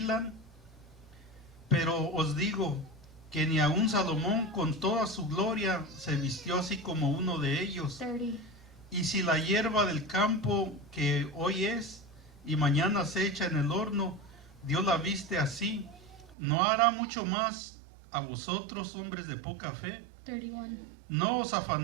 Pero os digo que ni aun Salomón con toda su gloria se vistió así como uno de ellos. 30. Y si la hierba del campo que hoy es y mañana se echa en el horno, Dios la viste así, ¿no hará mucho más a vosotros, hombres de poca fe? 31. No os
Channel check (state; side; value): drops out; left; at 16.4 s